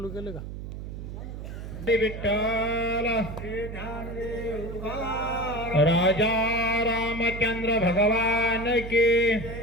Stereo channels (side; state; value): right; noise; hum, 9 dB below the sound